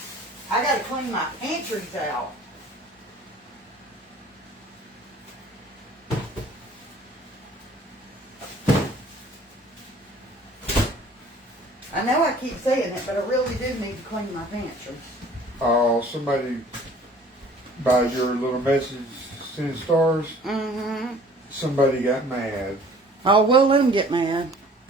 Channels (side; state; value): both; normal; correlation 0.52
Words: I gotta clean my pantries out. I know I keep saying it, but I really do need to clean my pantries. Oh, somebody by your little message sending stars. Mm-hmm. Somebody got mad. Oh, well, let them get mad.